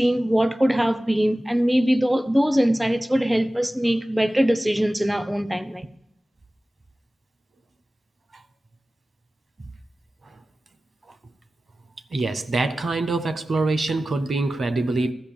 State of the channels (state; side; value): normal; both; correlation 0.96